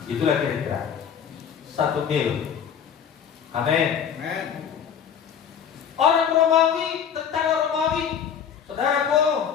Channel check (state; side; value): quieter; right; 7.9 dB